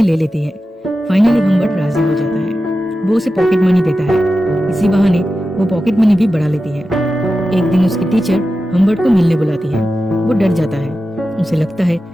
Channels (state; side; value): normal; both; correlation 0.92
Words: ले लेती है। फाइनली हम्बर्ट राजी हो जाता है। वो उसे पॉकेट मनी देता है। इसी बहाने वो पॉकेट मनी भी बढ़ा लेती है। एक दिन उसकी टीचर हम्बर्ट को मिलने बुलाती है। वो डर जाता है। उसे लगता है